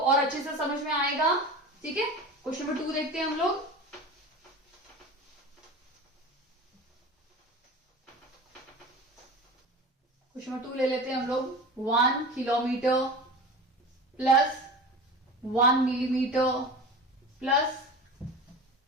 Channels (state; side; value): normal; both; correlation 0.33